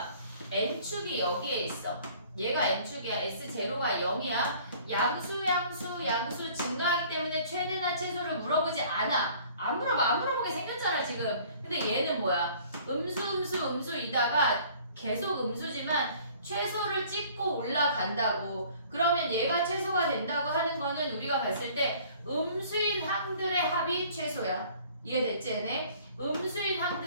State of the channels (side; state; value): both; inverted; correlation -0.53